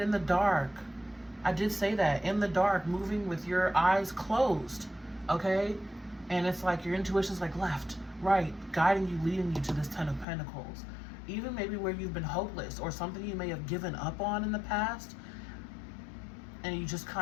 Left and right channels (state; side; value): drops out; right; at 10.2 s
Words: in the dark. I did say that. In the dark, moving with your eyes closed. Okay? And it's like your intuition's like left, right, guiding you, leading you to this 10 of Pentacles. Even maybe where you've been hopeless or something you may have given up on in the past, and you just